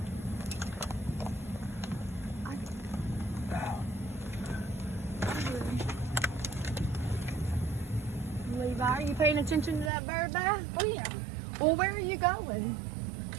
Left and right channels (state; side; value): drops out; left; at 9.9 s